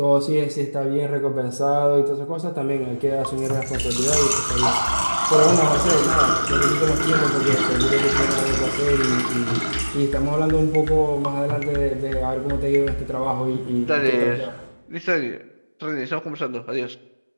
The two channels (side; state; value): both; inverted; correlation -1.00